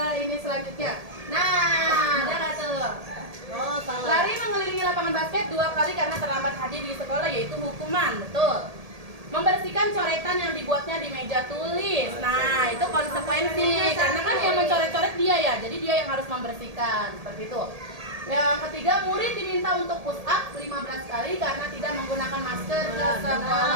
ini selanjutnya. Nah, ada nggak tuh? Oh, salah. Lari mengelilingi lapangan basket 2 kali karena terlambat hadir di sekolah, yaitu hukuman. Betul. Membersihkan coretan yang dibuatnya di meja tulis. Nah, itu konsekuensi. Karena kan yang mencoret-coret dia ya, jadi dia yang harus membersihkan. Seperti itu. Yang ketiga, murid diminta untuk push up 15 kali karena tidak menggunakan masker ke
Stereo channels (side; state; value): left; late; 1.8 ms